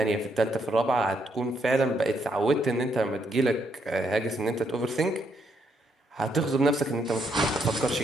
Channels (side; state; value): both; normal; correlation 0.75